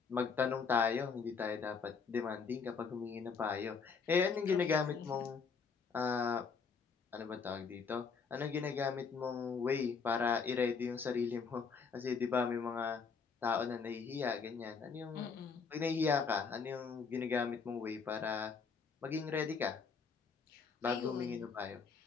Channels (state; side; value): quieter; right; 5.5 dB